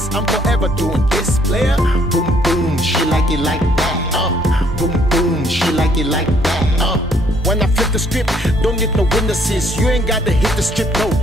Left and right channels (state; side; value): normal; both; correlation 0.65